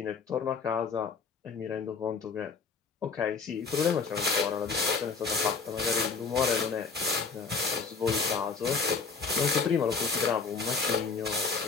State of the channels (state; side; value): quieter; right; 5.0 dB